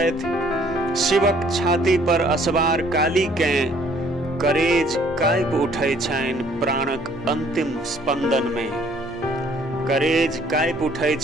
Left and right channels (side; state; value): both; normal; correlation 0.60